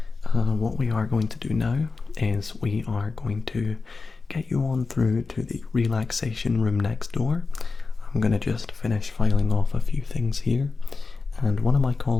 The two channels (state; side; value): quieter; right; 4.2 dB